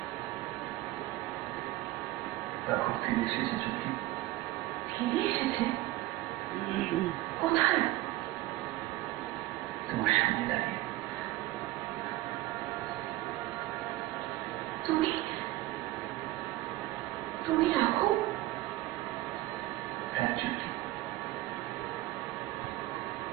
দেখো ফিরে এসেছে চোখে। ফিরে এসেছে? কোথায়? তোমার সামনে দাঁড়িয়ে। তুমি তুমি রাখো? হ্যাঁ চোখে।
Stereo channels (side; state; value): left; quieter; 16.8 dB